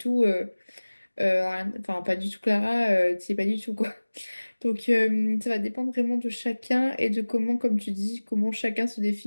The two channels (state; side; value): inverted; both; correlation -1.00